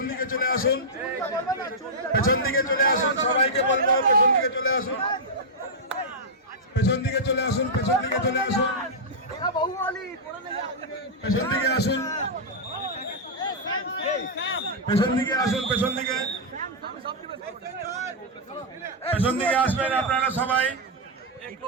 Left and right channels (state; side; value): normal; both; correlation -0.07